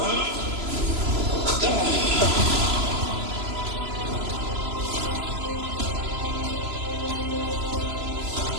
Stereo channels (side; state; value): left; late; 3.0 ms